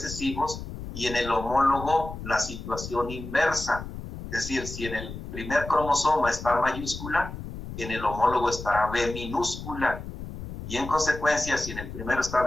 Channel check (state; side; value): noise; left; rumble, 10 dB below the sound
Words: y en el homólogo la situación inversa. Es decir, si en el primer cromosoma está mayúscula, en el homólogo estará B minúscula. Y en consecuencia, si en el primero está